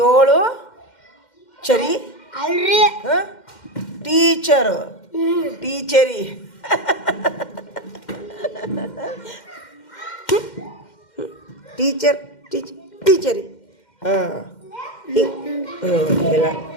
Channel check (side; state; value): right; late; 2.1 ms